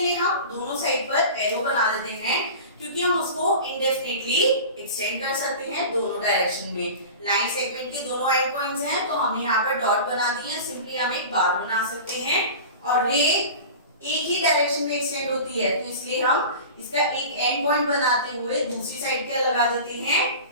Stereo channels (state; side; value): inverted; both; correlation -0.35